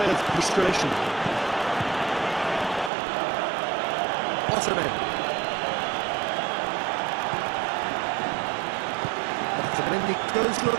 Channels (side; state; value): left; drops out; at 2.9 s